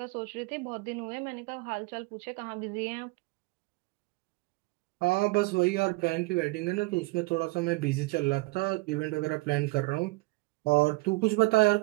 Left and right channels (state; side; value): quieter; left; 23.9 dB